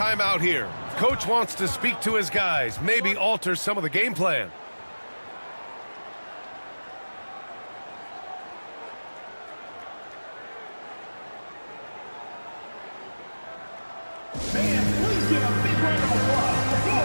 here. Coach wants to speak to his guys, maybe alter some of the game plan. Fans, please give a big round of applause for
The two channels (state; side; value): inverted; both; correlation -1.00